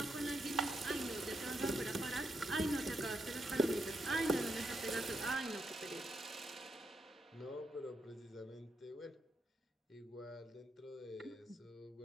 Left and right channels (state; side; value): normal; both; correlation 0.81